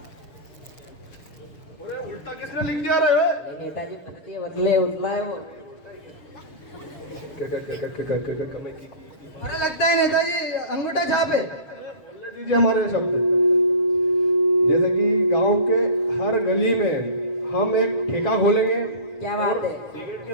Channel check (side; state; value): right; late; 6.8 ms